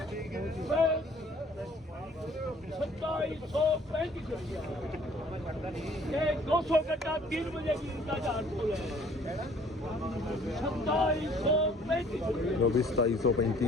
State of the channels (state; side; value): normal; both; correlation 0.56